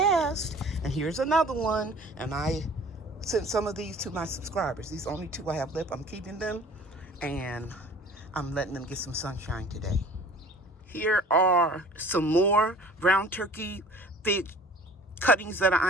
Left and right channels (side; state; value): both; normal; correlation 0.47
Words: And here's another one. And I sent some of these to my subscribers. These only 2 I have left. I'm keeping them, and I'm letting them get some sunshine today. Here are some more brown turkey fig cuttings that